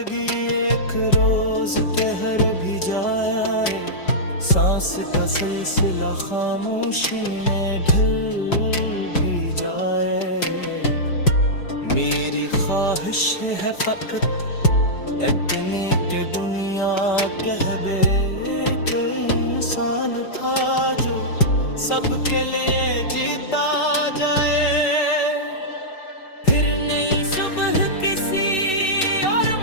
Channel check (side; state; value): right; late; 5.3 ms